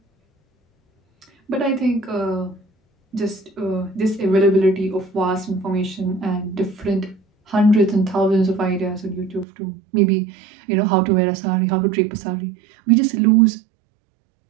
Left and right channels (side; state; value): left; drops out; at 9.5 s